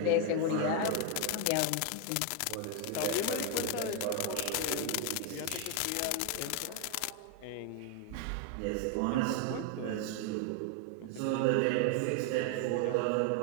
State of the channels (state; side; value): different; both; correlation 0.01